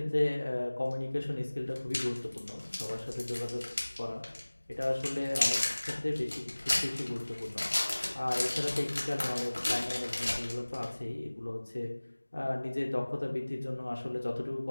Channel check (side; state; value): both; inverted; correlation -1.00